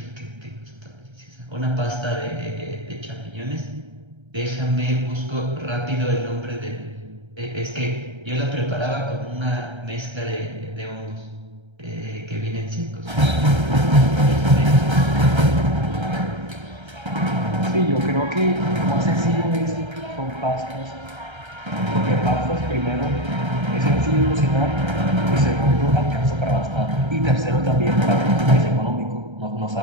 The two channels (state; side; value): late; left; 1.3 ms